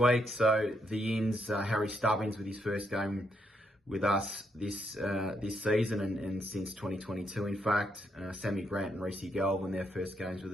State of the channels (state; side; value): normal; both; correlation 0.77